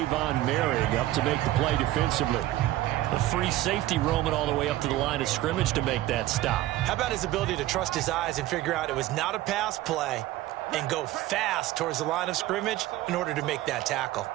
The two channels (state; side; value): quieter; left; 15.7 dB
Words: Merrick, up to make the play defensively. The free safety roaming all the way up to the line of scrimmage to make that stop. How about his ability to trust his eyes and figure out it was not a pass play and go fast towards the line of scrimmage in order to make that tackle.